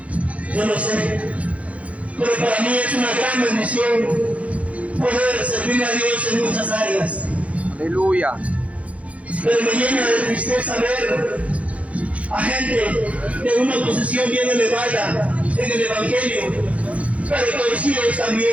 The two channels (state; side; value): late; left; 0.065 ms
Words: Yo no sé, pero para mí es una gran bendición poder servir a Dios en muchas áreas. Aleluya. Pero me llena de tristeza ver a gente de una posición bien elevada en el Evangelio, pero torcidos